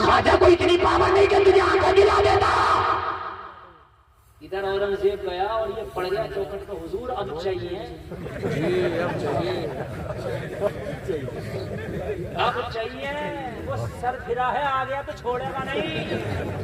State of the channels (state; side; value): identical; both; correlation 1.00